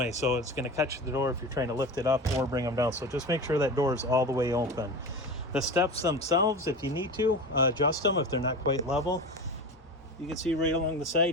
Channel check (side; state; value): both; normal; correlation 0.29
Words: So it's going to catch the door if you're trying to lift it up or bring them down. So just make sure that door is all the way open. The steps themselves, if you need to, adjust them if they're not quite level. You can see right along the